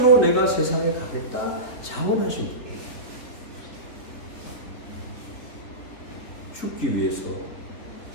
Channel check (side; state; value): right; late; 3.6 ms